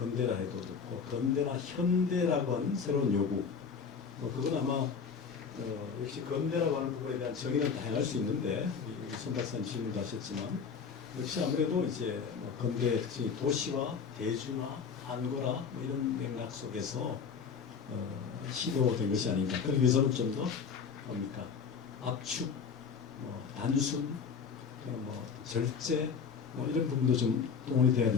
해도 좋고 근대나 현대라고 하는 새로운 요구 그건 아마 역시 근대라고 하는 부분에 대한 정의는 다양할 수 있는데 우리 손 박사님 질문도 하셨지만 역시 아무래도 이제 뭐 근대의 특징이 도시화, 대중화, 한거라 뭐 이런 맥락 속에서 시도된 것이 아닌가. 그러기 위해서는 좀 더 뭡니까 압축, 뭐 단순, 그런 뭐 절제 뭐 이런 부분도 좀 동원이 돼야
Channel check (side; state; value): right; quieter; 6.1 dB